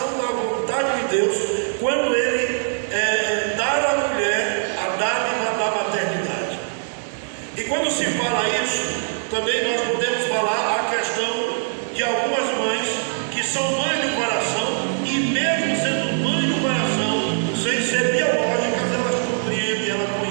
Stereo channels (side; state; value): left; silent; 64 dB below the other